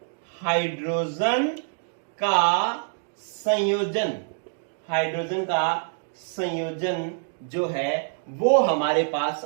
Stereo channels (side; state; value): left; silent; digital silence